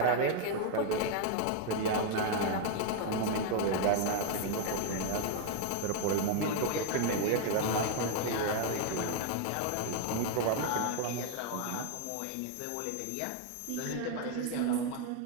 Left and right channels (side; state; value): both; different; correlation 0.00